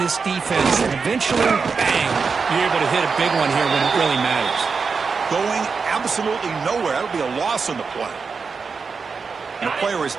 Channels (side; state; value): left; quieter; 5.1 dB